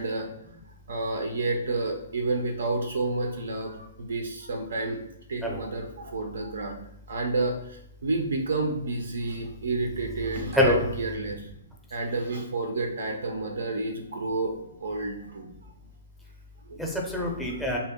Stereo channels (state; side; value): inverted; both; correlation -0.51